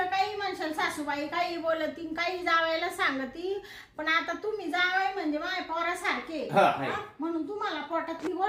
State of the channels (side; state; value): both; identical; correlation 1.00